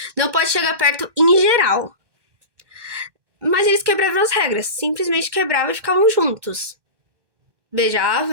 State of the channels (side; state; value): left; late; 1.2 ms